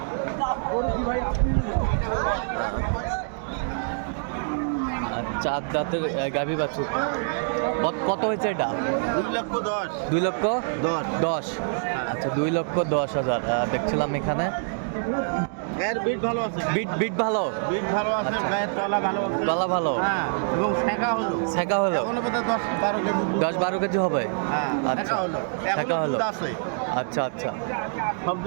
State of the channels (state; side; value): silent; left; digital silence